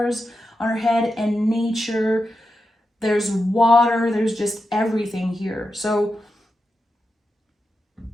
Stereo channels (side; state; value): both; normal; correlation 0.89